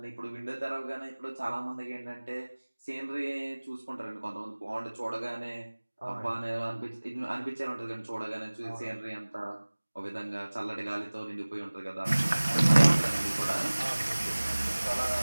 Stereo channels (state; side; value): inverted; both; correlation -1.00